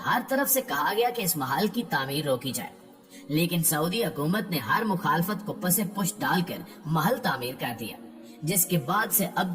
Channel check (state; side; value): identical; both; correlation 1.00